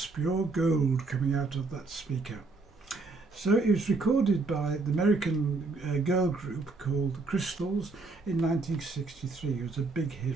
pure gold coming out of that speaker. So it was recorded by the American girl group called the Crystals in 1963. It was a big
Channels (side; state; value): left; quieter; 3.7 dB